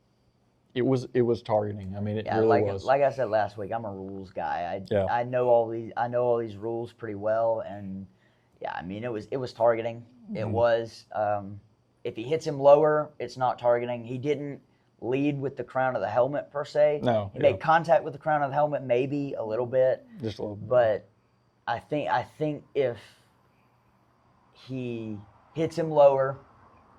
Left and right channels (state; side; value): identical; both; correlation 1.00